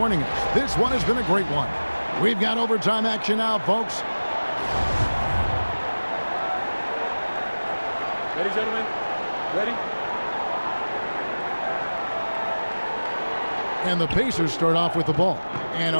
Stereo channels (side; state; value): both; inverted; correlation -1.00